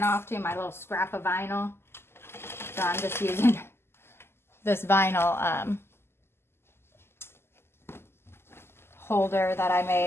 off to, my little scrap of vinyl. So I'm just using this vinyl holder that I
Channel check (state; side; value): late; right; 0.12 ms